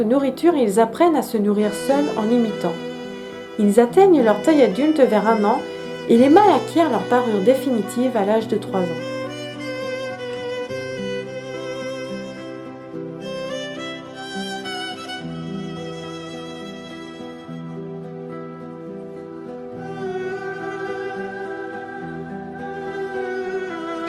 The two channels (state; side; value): identical; both; correlation 1.00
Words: nourriture et ils apprennent à se nourrir seuls en imitant. Ils atteignent leur taille adulte vers 1 an et les mâles acquièrent leur parure définitive à l'âge de 3 ans.